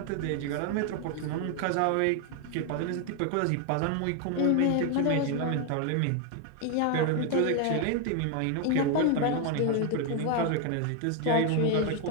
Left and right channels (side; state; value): both; different; correlation 0.01